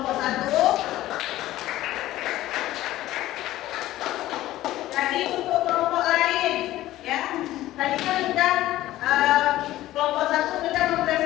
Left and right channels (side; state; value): right; quieter; 15.2 dB